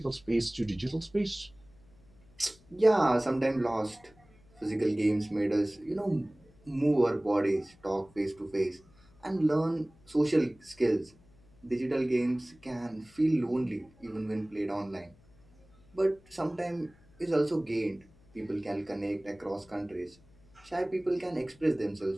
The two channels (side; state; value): left; noise; hum, 28 dB below the sound